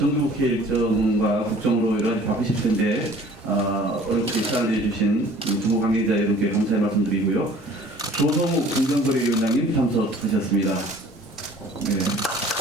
일정과 국정으로 여러 가지 바쁘실 텐데 어렵게 시간을 내주신 정부 관계자 여러분께 감사의 말씀드리고요. 조성욱 공정거래위원장님 참석하셨습니다.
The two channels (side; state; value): both; normal; correlation 0.51